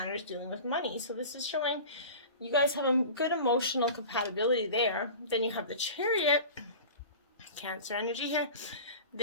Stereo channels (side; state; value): both; inverted; correlation -0.36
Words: dealing with money. So this is showing you guys have a good emotional compatibility there. Then you have the Chariot, Cancer energy here.